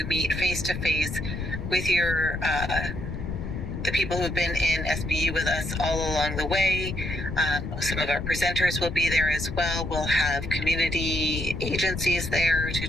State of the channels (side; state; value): left; noise; rumble, 5 dB below the sound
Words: meet face-to-face with your the people who've been in SBU with us all along the way. Some of our presenters will be there as well. We'll have community agencies there to